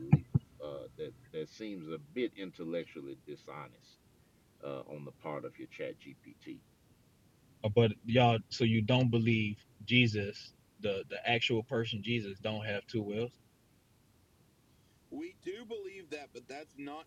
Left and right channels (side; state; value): both; identical; correlation 1.00